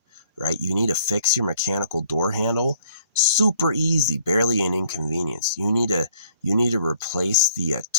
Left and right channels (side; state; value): both; inverted; correlation -0.61